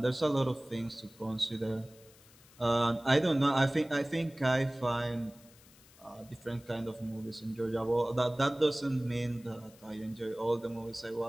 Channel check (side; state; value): left; noise; hiss, 25 dB below the sound